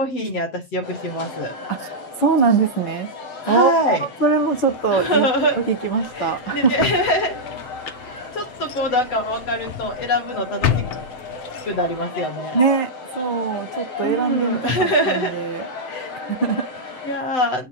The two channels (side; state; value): right; late; 8.0 ms